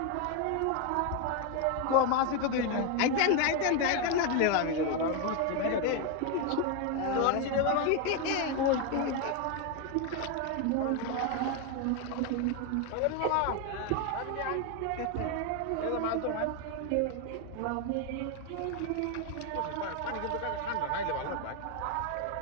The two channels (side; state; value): both; different; correlation 0.01